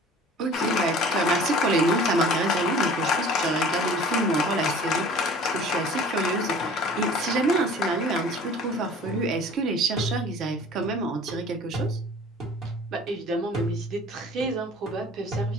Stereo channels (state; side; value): normal; both; correlation 0.46